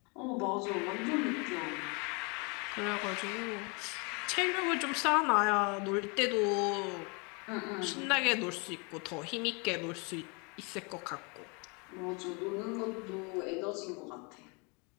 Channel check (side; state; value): right; quieter; 31.9 dB